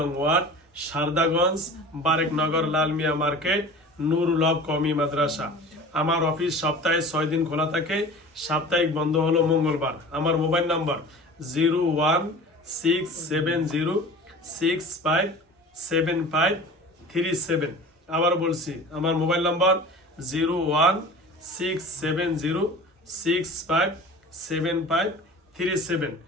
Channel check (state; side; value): normal; both; correlation 0.39